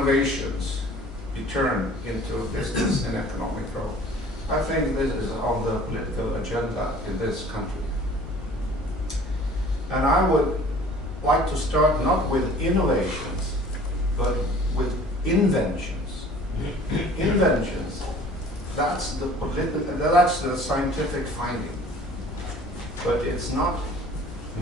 be turned into business and economic growth? I think this is on the political agenda in this country. And I would like to start not with innovations, but with inventions. Inventions, that's the scientific finding. But it's not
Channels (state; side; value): normal; both; correlation 0.49